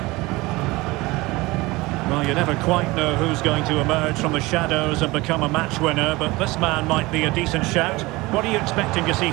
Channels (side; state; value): left; quieter; 21.6 dB